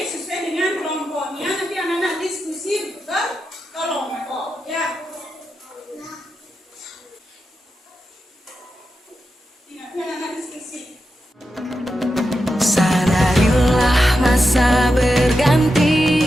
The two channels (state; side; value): normal; both; correlation 0.89